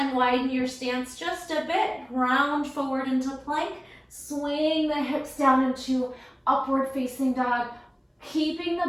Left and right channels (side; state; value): both; identical; correlation 1.00